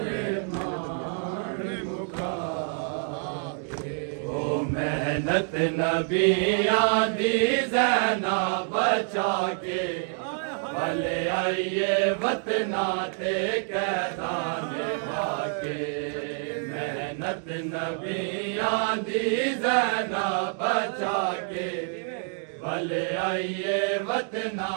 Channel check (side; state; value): left; silent; 55 dB below the other